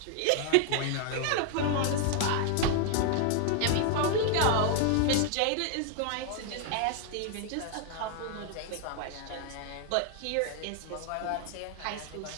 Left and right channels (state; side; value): different; both; correlation 0.00